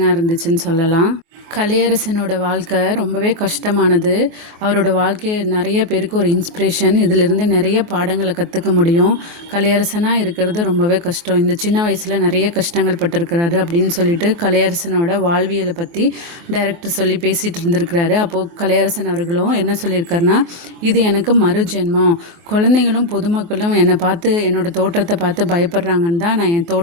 இருந்துச்சுன்னு சொல்லலாம். கலையரசனோட வாழ்க்கை ரொம்பவே கஷ்டமானது. அவரோட வாழ்க்கை நிறைய பேருக்கு ஒரு இன்ஸ்பிரேஷன். இதிலிருந்து நிறைய பாடங்களை கற்றுக்க முடியும். கலையரசனாக இருக்கிறது ரொம்பவே கஷ்டம். இந்த சின்ன வயசில் நிறைய கஷ்டங்கள் பட்டிருக்கிறாரு அப்படின்னு சொல்லிட்டு கலையரசனோட வாழ்வியலை பற்றி டைரக்டர் சொல்லி பேசிகிட்டு இருந்திருக்கிறாரு. அப்போது கலையரசன் அவர்களும் என்ன சொல்லியிருக்காருன்னா, இது எனக்கு மறு ஜென்மம். குழந்தைங்களும் பொதுமக்களும் என்னை பார்த்து என்னோட தோற்றத்தை பார்த்து பயப்படுறாங்கன்னு தான் நான் என்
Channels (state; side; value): late; left; 24 ms